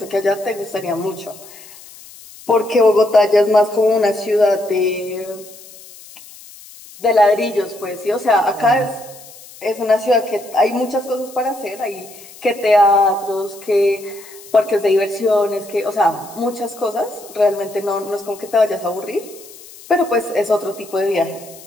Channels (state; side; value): noise; left; hiss, 20 dB below the sound